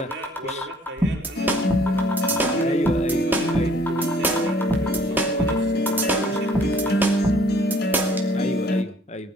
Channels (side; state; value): both; normal; correlation 0.58